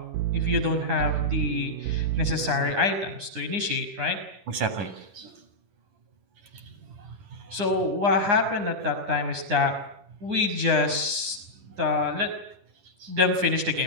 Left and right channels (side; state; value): left; late; 9.8 ms